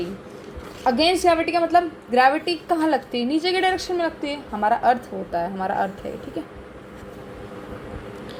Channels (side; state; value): both; identical; correlation 1.00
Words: Against gravity का मतलब ग्रेविटी कहाँ लगती है, नीचे के डायरेक्शन में लगती है, हमारा अर्थ होता है, हमारा अर्थ है, ठीक है,